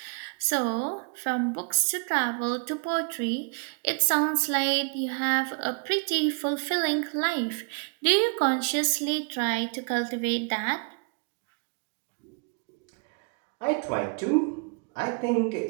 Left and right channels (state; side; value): quieter; left; 37.7 dB